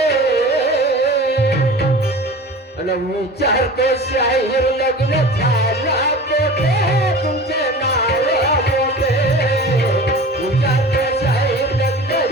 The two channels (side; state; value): both; normal; correlation 0.37